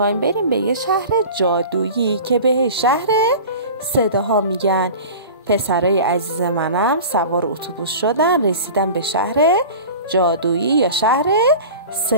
بریم به یه شهر جادویی که به شهر صداها میگن. پسرای عزیز منم سوار اتوبوس شدن، رسیدن به شهر جادویی یا شهر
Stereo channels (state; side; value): inverted; both; correlation -0.37